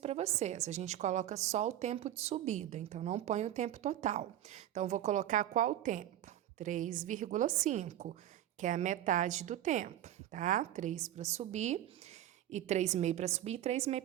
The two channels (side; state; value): left; quieter; 12.4 dB